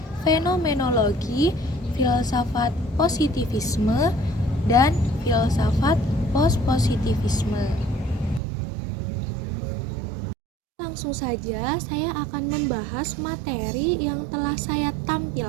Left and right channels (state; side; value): drops out; left; at 8.4 s